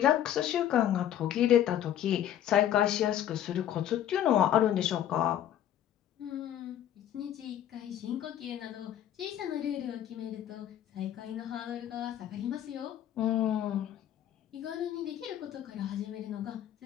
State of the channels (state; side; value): quieter; right; 11.0 dB